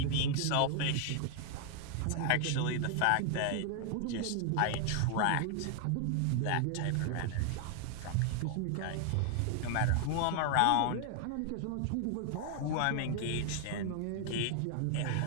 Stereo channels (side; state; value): both; different; correlation 0.00